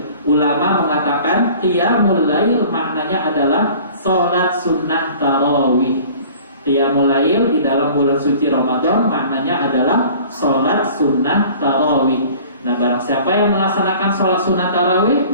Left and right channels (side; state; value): both; inverted; correlation -0.47